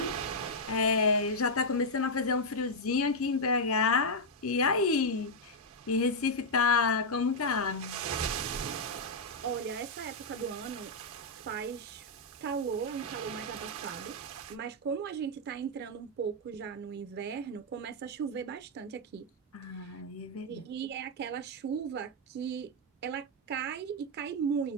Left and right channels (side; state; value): both; normal; correlation -0.03